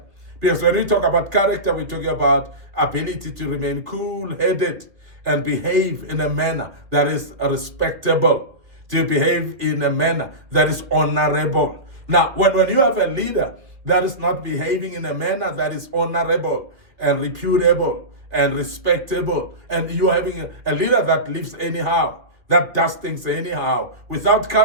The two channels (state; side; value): late; left; 2.3 ms